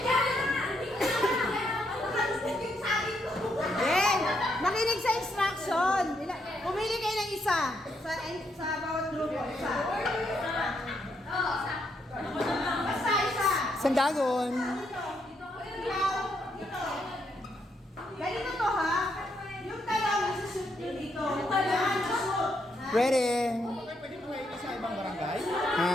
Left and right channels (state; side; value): normal; both; correlation 0.77